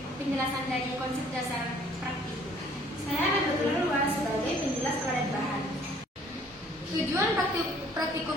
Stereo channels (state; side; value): normal; both; correlation 0.58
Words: penjelasan dari konsep dasar praktikum. Saya Nabatul Luas sebagai penjelas padat bahan. Tujuan